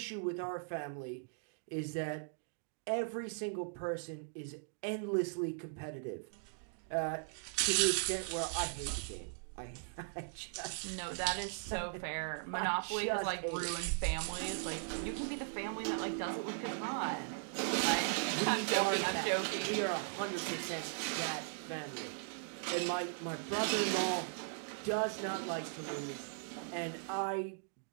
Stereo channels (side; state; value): left; silent; digital silence